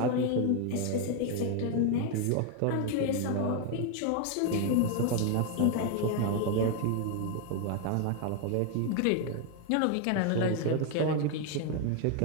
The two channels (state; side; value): different; both; correlation 0.01